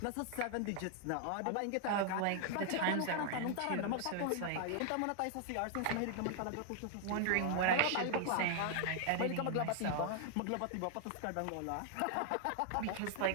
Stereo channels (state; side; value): different; both; correlation 0.00